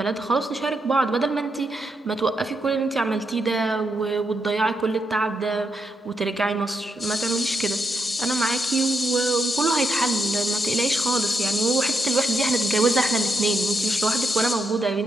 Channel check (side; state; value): both; normal; correlation 0.82